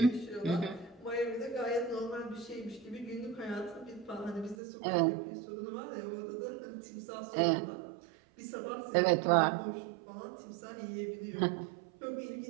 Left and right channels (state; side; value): drops out; left; at 4.5 s